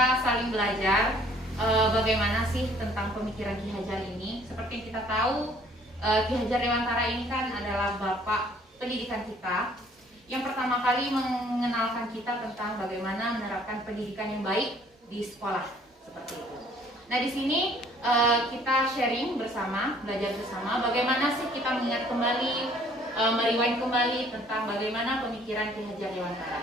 saling belajar bagaimana sih tentang pemikiran Ki Hajar ini. Seperti yang kita tahu, Ki Hajar Dewantara ini kan adalah bapak pendidikan kita yang pertama kali mengenalkan kita tentang bagaimana menerapkan pendidikan yang baik di sekolah seperti itu. Nah, di sini kita sharing bersama, belajar bersama bagaimana sih kita mengingat kembali, merewind kembali tentang bagaimana pemikiran Ki Hajar Dewantara.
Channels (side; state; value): both; normal; correlation 0.58